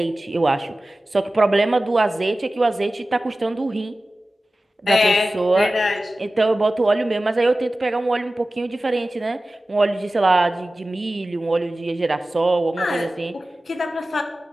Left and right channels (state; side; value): normal; both; correlation 0.96